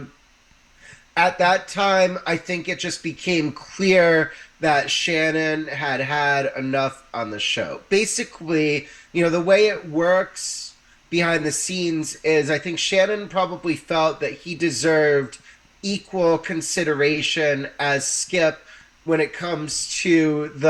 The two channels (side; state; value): both; identical; correlation 1.00